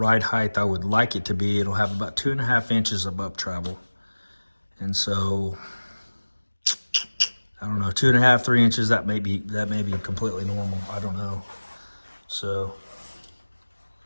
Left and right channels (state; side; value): inverted; both; correlation -1.00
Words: height I would like it to be, it'll have about 2.5 inches of up travel. And so, I don't know, 2.5, 3 inches, that may be completely normal. I don't know. So,